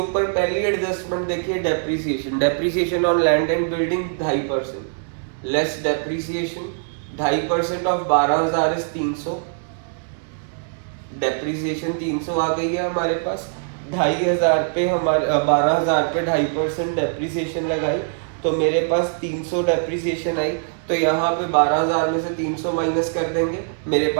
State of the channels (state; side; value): silent; left; digital silence